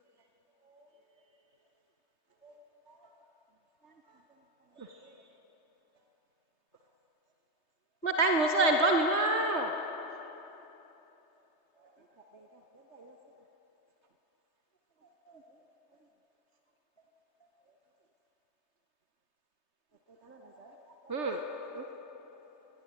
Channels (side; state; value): right; late; 3.3 ms